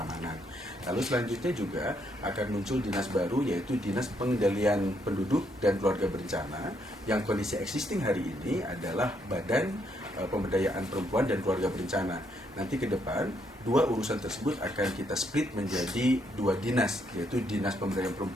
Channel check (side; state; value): both; normal; correlation 0.74